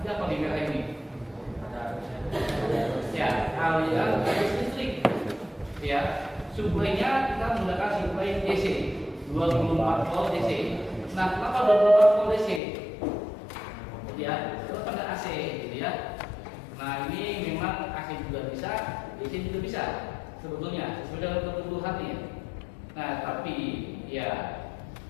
apa di merah ini? Ya, aliran arus listrik. Ya, suplainya kita menggunakan suplai DC 24 volt DC. Nah, kenapa 24 volt DC? Ya, itu pada AC, gitu ya. Nah, ini memang AC juga bisa, DC juga bisa sebetulnya sesuai dengan kebutuhannya. Nah, tapi ya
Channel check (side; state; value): right; drops out; at 12.6 s